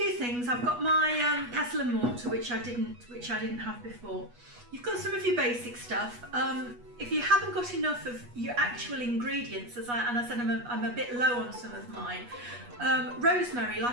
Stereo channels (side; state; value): left; late; 8.3 ms